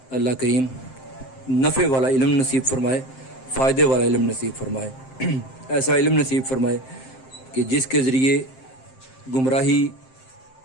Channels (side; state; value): right; late; 7.7 ms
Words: اللہ کریم نفع والا علم نصیب فرمائے، فائدے والا علم نصیب فرمائے، ایسا علم نصیب فرمائے کہ جس کے ذریعے گمراہی